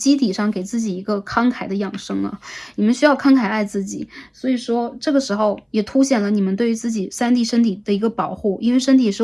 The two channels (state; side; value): identical; both; correlation 1.00